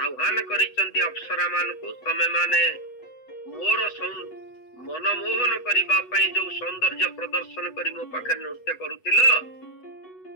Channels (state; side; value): late; right; 8.1 ms